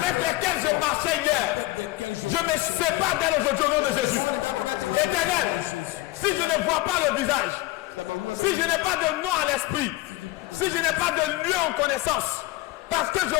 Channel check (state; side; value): quieter; right; 18.6 dB